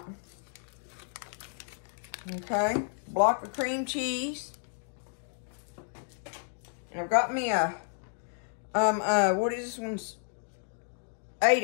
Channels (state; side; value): silent; right; digital silence